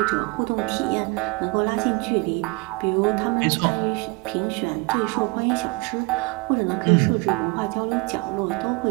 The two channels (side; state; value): left; quieter; 25.9 dB